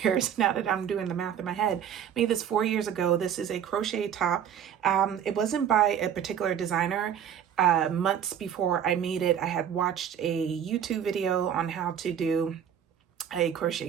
now that I'm doing the math in my head. Made this 4 years ago. This is a crochet top. It wasn't by a particular designer. Months before I made it, I had watched a YouTube video on how to do a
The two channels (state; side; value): quieter; left; 9.0 dB